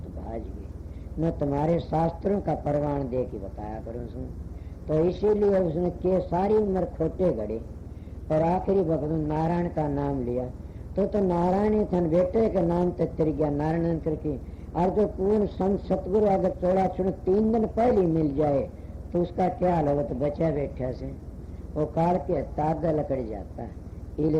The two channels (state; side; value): identical; both; correlation 1.00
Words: भाज गए। न तुम्हारे शास्त्रों का परवान दे के बताया करो सुन। तो इसीलिए उसने के सारी उम्र खोटे गड़े और आखिरी वक्त नारायण का नाम लिया। तो नारायण थन बेटे के नाम तक तिर गया नारायण करके। और जो पूर्ण संत सतगुरु अगर चौड़ा चुन 3 दिन पहले मिल जाए तो उसका क्या हाल होगा? तो बचा बैठा से वो काल के तागा लकड़ जाता है। इले